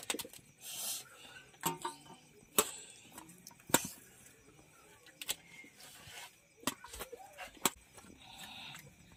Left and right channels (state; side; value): identical; both; correlation 1.00